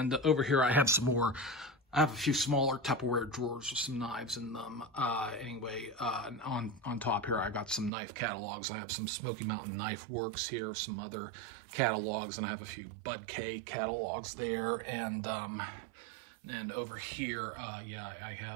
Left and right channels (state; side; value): drops out; left; at 7.9 s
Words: over here I have some more. I have a few smaller Tupperware drawers with some knives in them. Anyway, on top here, I got some knife catalogs. I have some Smoky Mountain Knife Works here, some other catalogs, and I have a few Bud K catalogs there. And over here, yeah, I